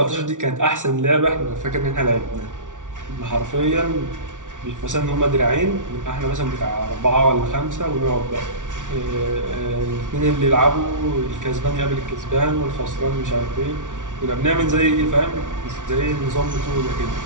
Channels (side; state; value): left; late; 0.87 ms